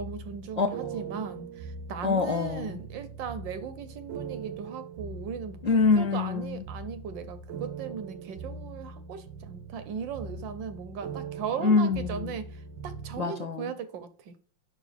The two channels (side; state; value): left; late; 5.7 ms